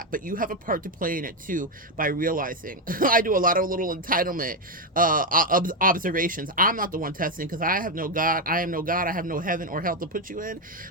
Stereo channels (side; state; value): both; normal; correlation 0.07